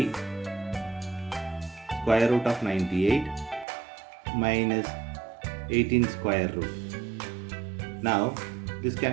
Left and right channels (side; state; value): left; drops out; at 3.7 s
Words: square root of 98 minus 18 square root. Now this